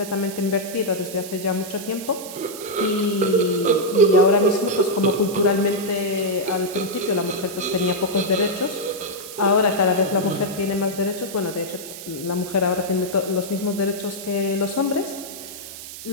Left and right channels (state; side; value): noise; right; hiss, 12 dB below the sound